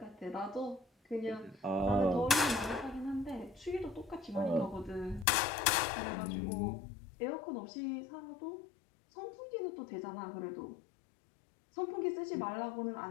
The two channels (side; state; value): right; drops out; at 5.2 s